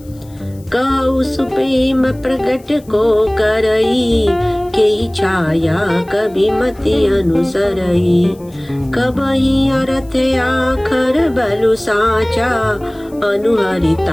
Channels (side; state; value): left; noise; hiss, 28 dB below the sound